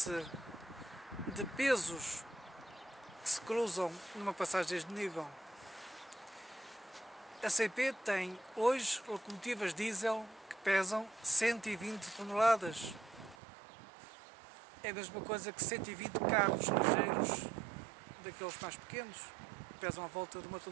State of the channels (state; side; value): drops out; left; at 13.4 s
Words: de pesos que se cruzam numa passagem de nível. A CP tem hoje locomotivas diesel que pesam 120 toneladas. É a mesma coisa que 120 carros ligeiros daqueles mais pequenos, que pesam à volta de 1